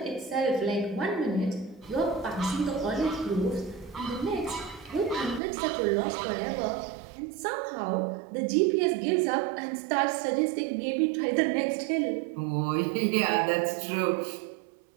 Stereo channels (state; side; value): drops out; left; at 5.4 s